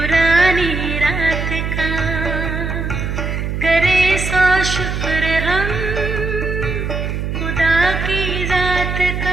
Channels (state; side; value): noise; right; hum, 3 dB below the sound